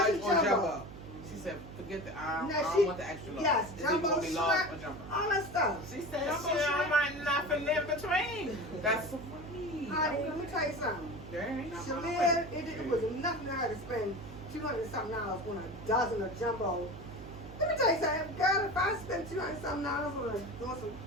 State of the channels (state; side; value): noise; right; hum, 14 dB below the sound